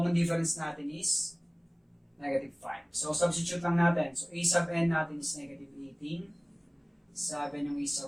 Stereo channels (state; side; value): identical; both; correlation 1.00